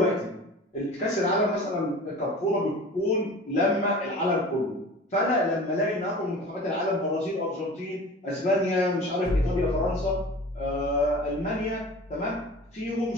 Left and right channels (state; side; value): normal; both; correlation 0.39